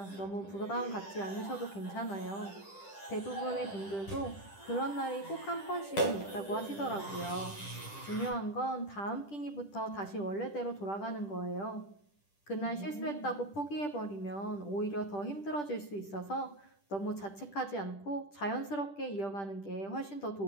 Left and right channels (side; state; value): right; late; 10 ms